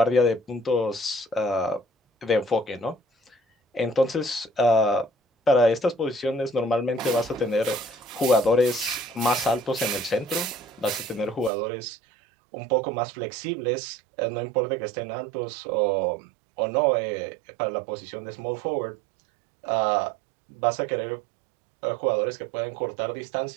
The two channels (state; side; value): drops out; left; at 11.5 s